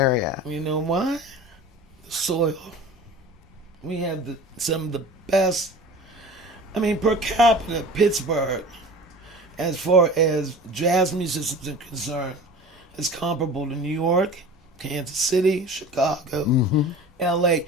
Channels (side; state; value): both; normal; correlation 0.38